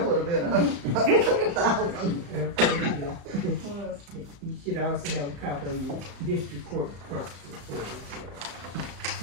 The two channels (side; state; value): left; late; 35 ms